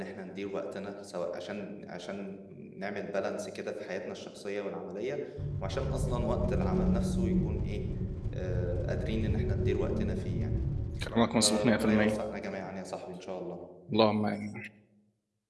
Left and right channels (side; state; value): both; identical; correlation 1.00